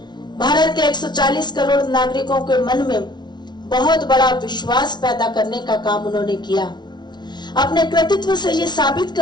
भारत के 140 करोड़ नागरिकों के मन में बहुत बड़ा विश्वास पैदा करने का काम उन्होंने किया। अपने कृतित्व से ये साबित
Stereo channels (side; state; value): right; late; 0.20 ms